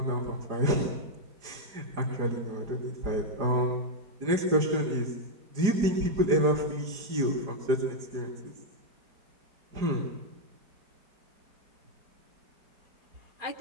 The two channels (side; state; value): left; late; 4.8 ms